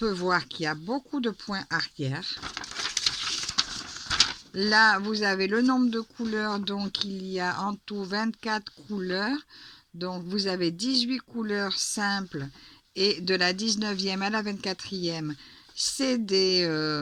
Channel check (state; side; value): identical; both; correlation 1.00